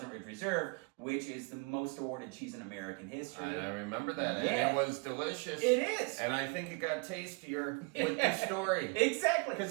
Ridge Reserve, which is the most awarded cheese in American history. And I remember that. Yeah. And it was delicious. It is. And I think it got tastier with the story. Exactly.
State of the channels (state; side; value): quieter; left; 32.0 dB